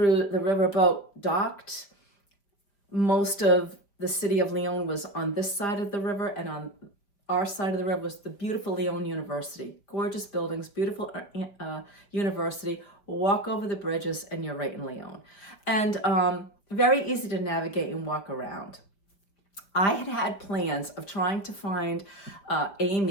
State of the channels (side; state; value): right; late; 5.1 ms